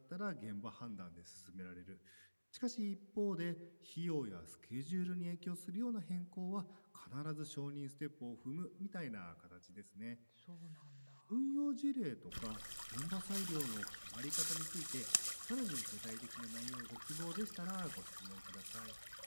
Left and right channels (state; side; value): inverted; both; correlation -1.00